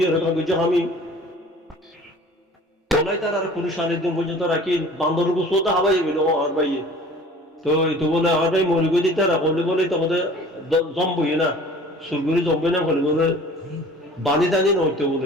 রেখা বুঝছো আমি তোলাই তার আর পুলিশ আনির দিন পর্যন্ত রাখি বান্দর গুছোতে হাবাই গেল আর ভাইয়ে তো এইটো বলে আর ভাই মরি গই দিতে রাখলে বলে তখন জম্বই না সুরগুলি জম্বই না বলে বলে বানি টানি নইতে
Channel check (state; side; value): normal; both; correlation 0.46